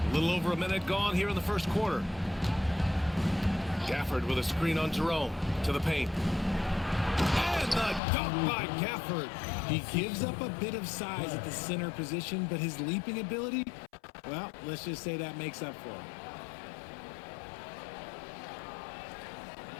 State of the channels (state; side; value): drops out; right; at 8.0 s